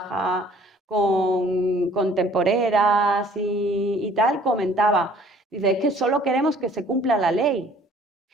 con temporeras y tal, comentaba, dice, es que solo queremos que se cumpla la ley.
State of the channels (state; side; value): normal; both; correlation 0.55